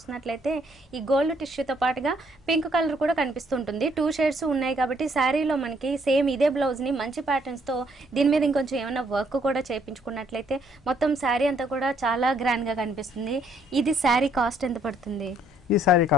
ఈ గోల్డ్ టిష్యూతో పాటుగా పింక్ కలర్ కూడా కనిపిస్తుంటుంది. 2 షేడ్స్ ఉన్నాయి కాబట్టి శారీలో మనకి సేమ్ ఇదే బ్లౌజ్ ని మంచి ప్యాటర్న్స్ తో దీని మీద ఇంకొంచెం ఏమైనా వర్క్ కూడా చేయించుకున్నట్లయితే మొత్తం శారీ అంతా కూడా చాలా గ్రాండ్ గా కనిపిస్తుంది. ఇది శారీ కాస్ట్ ఎంత పడుతుంది? ఈ సారీ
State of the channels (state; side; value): normal; both; correlation 0.67